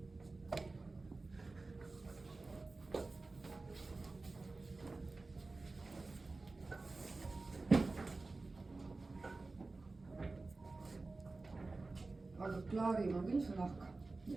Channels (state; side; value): quieter; left; 3.5 dB